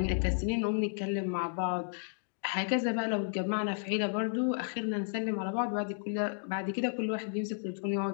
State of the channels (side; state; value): right; silent; digital silence